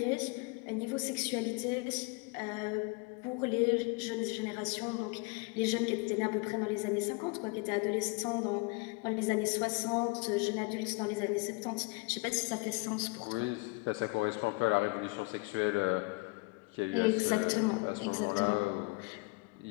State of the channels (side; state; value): right; quieter; 28.0 dB